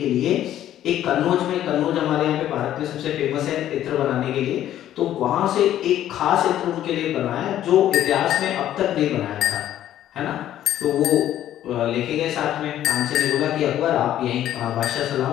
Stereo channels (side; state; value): right; quieter; 12.0 dB